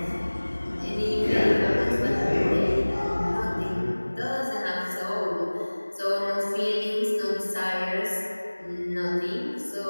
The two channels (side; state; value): both; inverted; correlation -1.00